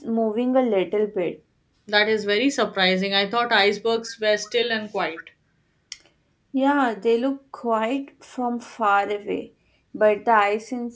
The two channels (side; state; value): both; identical; correlation 1.00